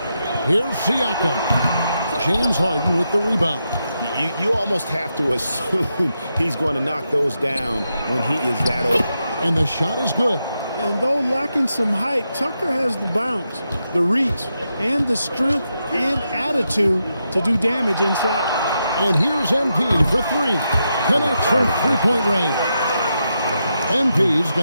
Here's Siakam. James Harden with the rebound. You almost have to assume he's going to knock those down when he is that old. And the shot is good. And though lacking some height, Tucker has the bounce, the reach, and the strength and attitude to do damage inside. And here's MP for three. Connects from three-point range. MP's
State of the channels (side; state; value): both; inverted; correlation -0.85